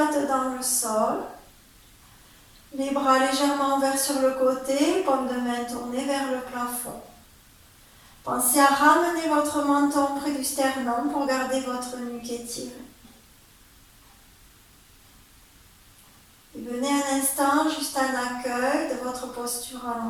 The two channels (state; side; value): identical; both; correlation 1.00